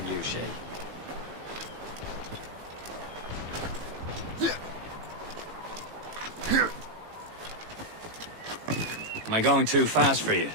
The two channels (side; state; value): left; late; 18 ms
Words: you, Shay. Am I going too fast for you?